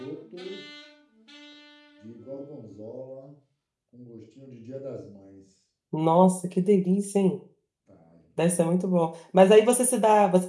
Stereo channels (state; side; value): identical; both; correlation 1.00